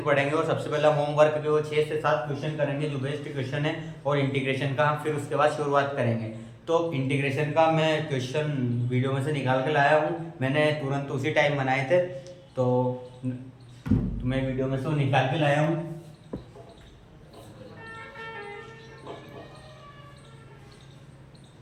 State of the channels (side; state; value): both; identical; correlation 1.00